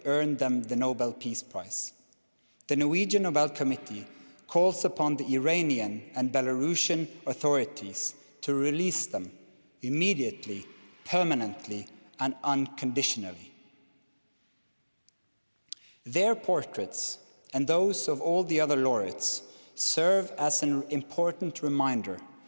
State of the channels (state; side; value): inverted; both; correlation -1.00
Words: earned them the Nobel Peace Prize. The Norwegian Nobel Committee calls upon the Iranian and Belarusian authorities to release them immediately, permanently, and unconditionally. Their portraits and those of all the other laureates serve as an important reminder